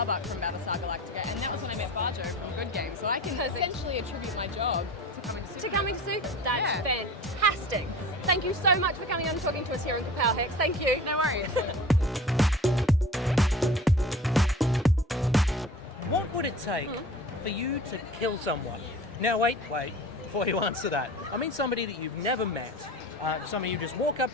from Battlestar Galactica, and that was when I met Barjo from Good Game. So I can essentially attribute my job to coming to Supanova. To coming to Super? That's fantastic. Thank you so much for coming on and talking to us here in Kapow, Hex. Thank you. No worries. What would it take for you to kill someone? Now wait, before you answer that. I mean somebody that you've never met. Somebody you just walk up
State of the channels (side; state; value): both; normal; correlation 0.39